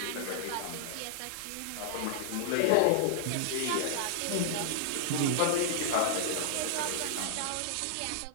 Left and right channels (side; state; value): both; different; correlation -0.01